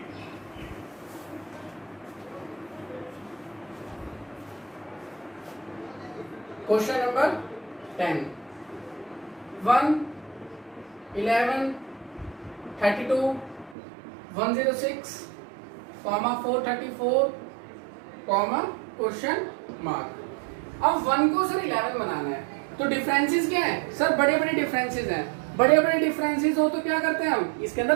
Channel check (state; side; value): drops out; left; at 13.8 s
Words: Question number 10, 1 11 32 106 434 question mark. अब 1 को सर 11 बनाना है, तो डिफरेंसेस क्या है सर, बड़े बड़े डिफरेंसेस हैं। बड़े बड़े डिफरेंसेस हो तो क्या करते हैं हम, इसके